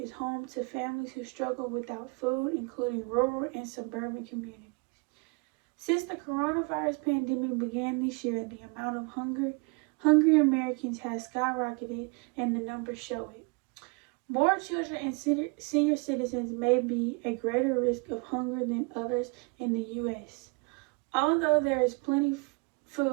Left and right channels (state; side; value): quieter; left; 32.1 dB